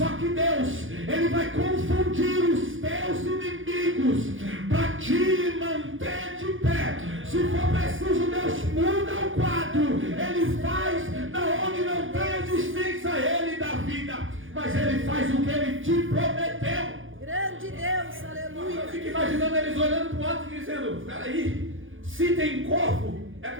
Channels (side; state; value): left; late; 0.58 ms